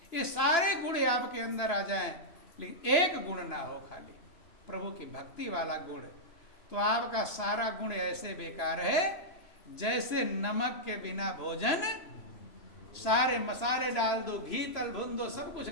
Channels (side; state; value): right; late; 2.9 ms